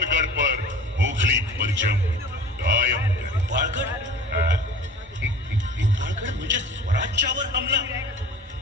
पर मुगली परचम कायम करें. भोपाळगड म्हणजे स्वराज्यावर हमला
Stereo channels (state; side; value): normal; both; correlation 0.41